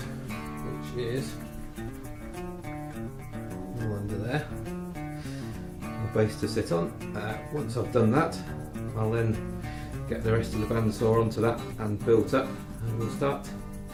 is all under there. The base to sit on. Once I've done that, I'll then get the rest of the bandsaw onto that and built up, and we'll start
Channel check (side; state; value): both; identical; correlation 1.00